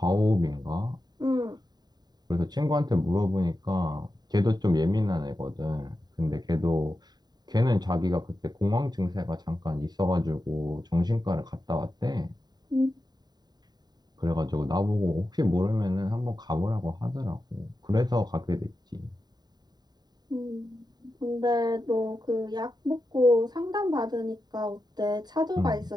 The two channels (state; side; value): late; left; 0.20 ms